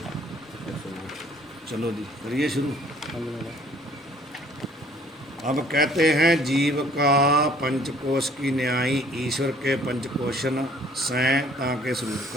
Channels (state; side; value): normal; both; correlation 0.57